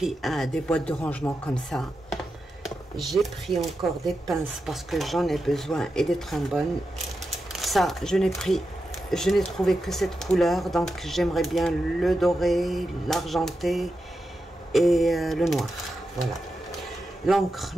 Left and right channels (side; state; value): both; normal; correlation 0.89